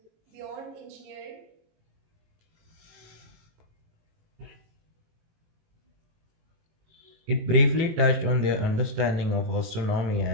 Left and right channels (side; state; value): left; late; 18 ms